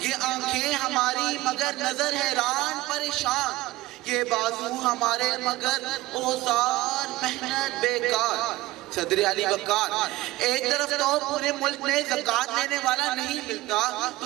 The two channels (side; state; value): left; quieter; 18.1 dB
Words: آنکھیں ہماری مگر نظر حیران پریشان یہ بازو ہمارے مگر اوزار محنت بیکار صدر علی وقار ایک طرف تو پورے ملک میں زکوٰۃ لینے والا نہیں ملتا